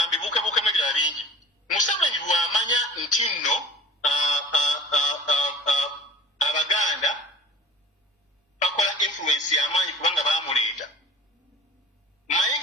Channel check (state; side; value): normal; both; correlation 0.44